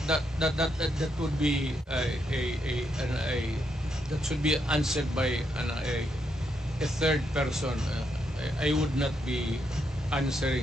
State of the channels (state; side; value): normal; both; correlation 0.79